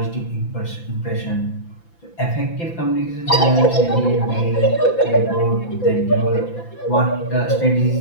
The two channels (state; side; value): late; right; 5.9 ms